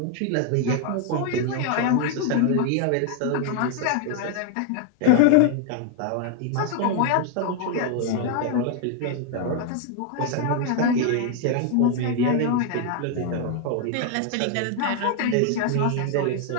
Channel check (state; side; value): different; both; correlation 0.01